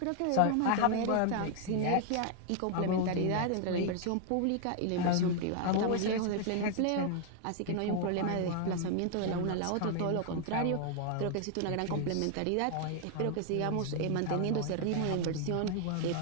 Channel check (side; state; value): both; different; correlation 0.00